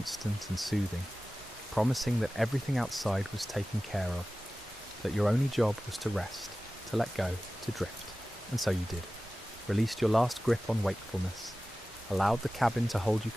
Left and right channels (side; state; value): both; normal; correlation 0.96